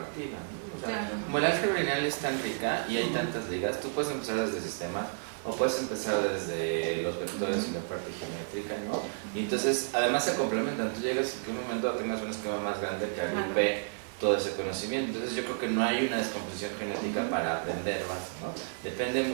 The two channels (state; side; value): silent; left; digital silence